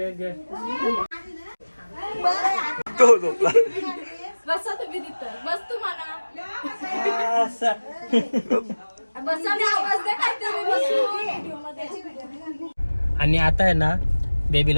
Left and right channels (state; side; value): inverted; both; correlation -1.00